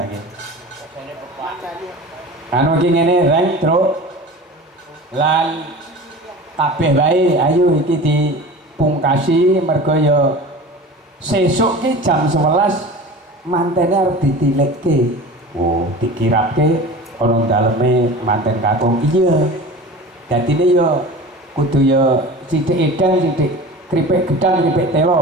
iki anu iki ngene Reng Truk lan kabeh wae ayo iki dipungkasi mergo ya sesuk ki jam 11 mantene arep ditilikke oh dikirapke ana daleme manten kakung iya dadine ya kudu ya sithik edang sithik kripik gedang kripik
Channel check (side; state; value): both; normal; correlation 0.36